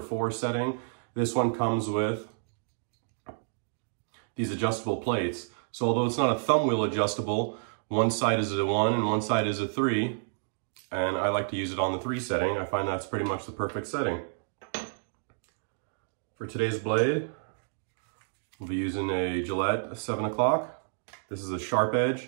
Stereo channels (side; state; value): left; silent; digital silence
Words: 4 setting. This one comes with these adjustable plates. So although it's not a thumb wheel adjustable, one side is a 1 and one side is a 3. And I like to use it on the 3 setting. I find that's pretty much the perfect setting. For today's blade, we'll be using a Gillette 7 o'clock. This is a sharp edge.